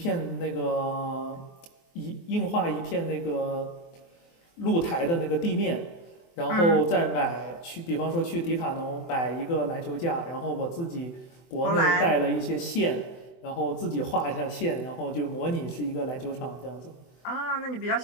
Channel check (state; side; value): late; right; 24 ms